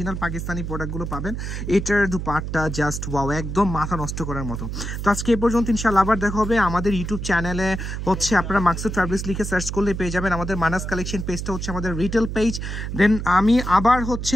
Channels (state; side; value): noise; right; hum, 5 dB below the sound